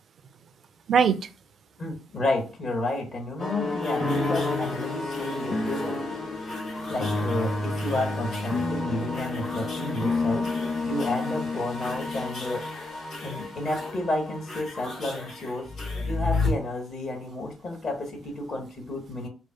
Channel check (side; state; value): both; normal; correlation 0.78